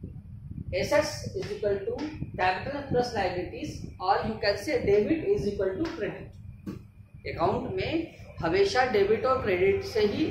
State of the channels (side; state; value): both; identical; correlation 1.00